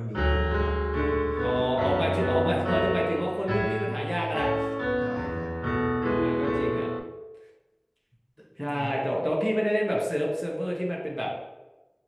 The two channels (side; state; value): both; identical; correlation 1.00